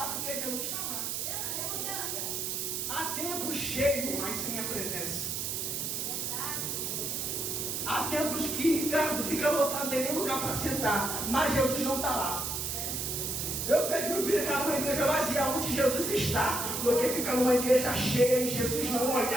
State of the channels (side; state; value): right; noise; hiss, 2 dB below the sound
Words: porque Jesus está lá. Há tempo cheio, mas sem a presença. Há tempos que, cara, fica lotado, não tem nem lugar para sentar, mas Jesus não está lá. Eu prefiro ficar numa igreja vazia onde Jesus está, do que ficar numa igreja cheia e Jesus não